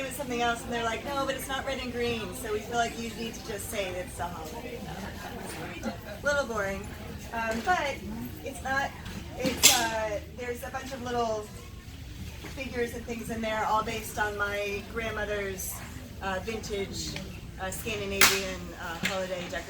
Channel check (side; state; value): both; identical; correlation 1.00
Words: it something else, and they're like, no, but it's not red and green, so we feel like you need to just say it's a holiday. A little boring. But it's not, there's a bunch of little figures and things in there, all based on my grandmother's vintage Scandinavian holiday